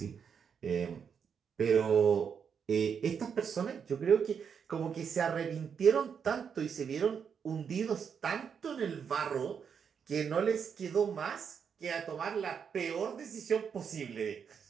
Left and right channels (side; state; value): left; quieter; 7.0 dB